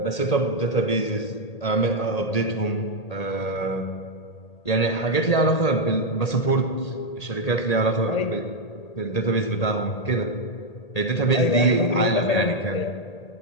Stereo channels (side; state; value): right; late; 1.8 ms